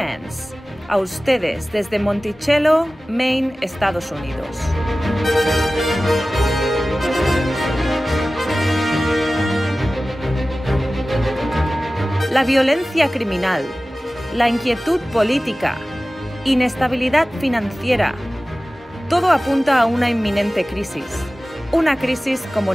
a ustedes desde Monticello, Maine, Estados Unidos. La violencia criminal, la inquietud política, inestabilidad financiera, todo apunta a una inminente crisis, una crisis como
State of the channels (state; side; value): normal; both; correlation 0.96